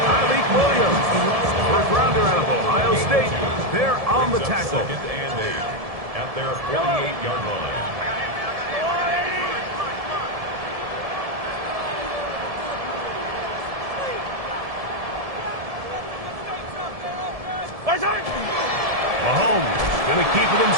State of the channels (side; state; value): left; late; 1.7 ms